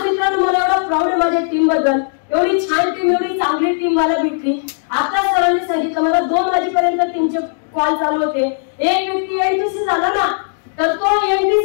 मित्रांनो मला एवढा प्राऊड आहे माझ्या टीम बद्दल. एवढी छान टीम, एवढी चांगली टीम मला भेटली. आता सरांनी सांगितलं मला 2 वाजेपर्यंत टीमचे कॉल चालू होते. एक व्यक्ती एनटीसी झाला ना, तर तो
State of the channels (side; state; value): right; silent; digital silence